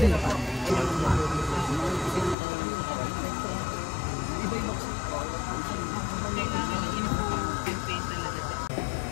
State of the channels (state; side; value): drops out; right; at 2.4 s